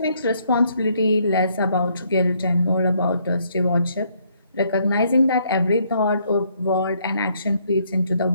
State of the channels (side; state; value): both; inverted; correlation -0.69